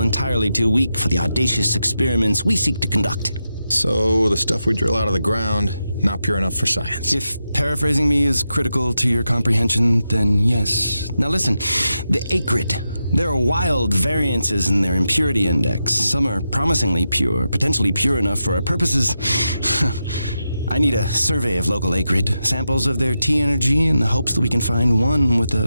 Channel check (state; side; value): inverted; both; correlation -0.88